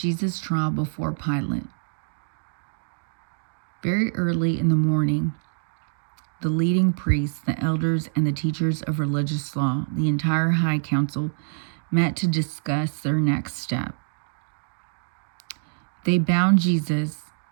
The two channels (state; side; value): silent; left; digital silence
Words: trial before Pilate. Very early in the morning, the leading priests, the elders, and the teachers of religious law, the entire high council, met to discuss their next step. They bound Jesus,